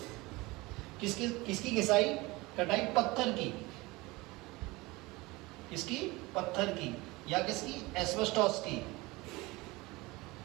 किसकी घिसाई कटाई? पत्थर की। किसकी? पत्थर की। या किसकी? एस्बेस्टोस की।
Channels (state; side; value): quieter; left; 22.2 dB